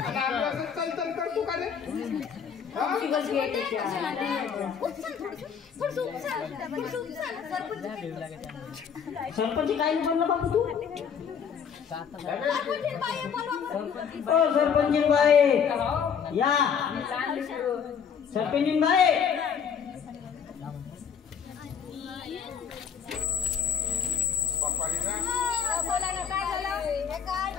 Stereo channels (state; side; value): quieter; right; 7.3 dB